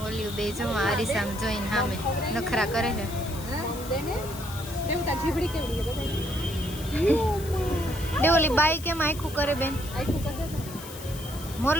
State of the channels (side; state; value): left; noise; hiss, 14 dB below the sound